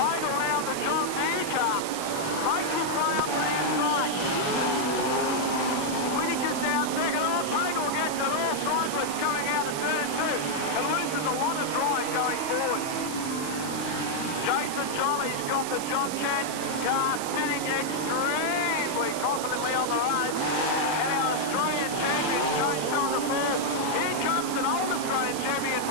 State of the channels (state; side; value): noise; right; hiss, 8 dB below the sound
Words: now the John Deere car. Makes his way up to the inside. Whittaker's down second. Oh, Pagel gets it all sideways coming out of turn 2 and loses a lot of drive going forward. Jason Jolly's got the John Chance car sitting extremely confidently on the road. And our Australian champion, James on the floor. Here comes an old Australian champion,